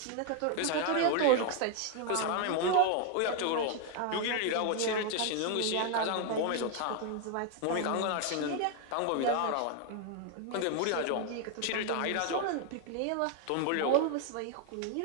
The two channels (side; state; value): both; different; correlation 0.01